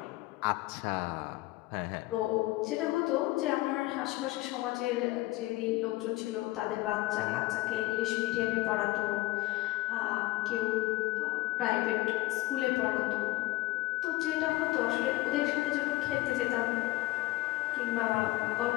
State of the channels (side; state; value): right; quieter; 19.8 dB